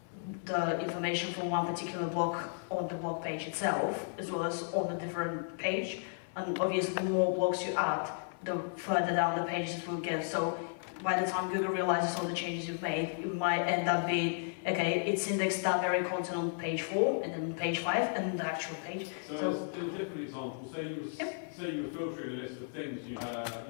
the information from one particular blog on the blog page itself, as well as on a different page. And obviously, the more blogs you add, the further down the pages it will get. So by the time Google realizes all the changes you've made, it might end up being, okay, it's indexed that very content on page 4, and then page 5, and the actual page. So as a different example, say you were filtering a list of things, you had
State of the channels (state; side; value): silent; right; 55 dB below the other